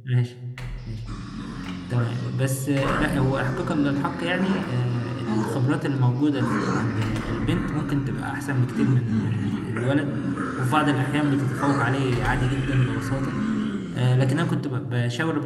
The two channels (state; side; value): identical; both; correlation 1.00